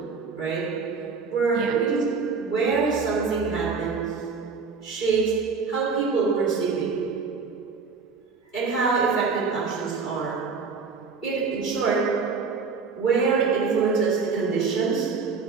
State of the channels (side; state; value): left; quieter; 4.9 dB